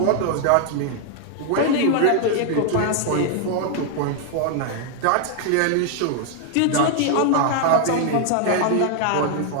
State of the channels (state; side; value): different; both; correlation 0.00